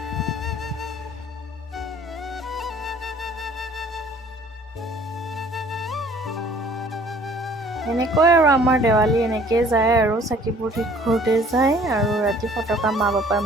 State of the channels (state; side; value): normal; both; correlation 0.54